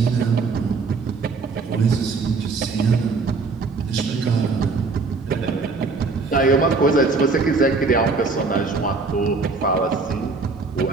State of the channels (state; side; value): quieter; left; 4.2 dB